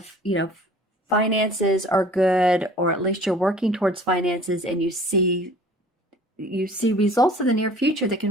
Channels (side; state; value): both; normal; correlation 0.49